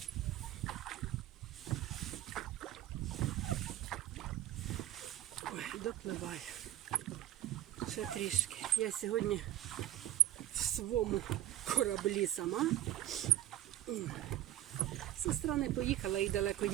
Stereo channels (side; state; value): left; quieter; 13.4 dB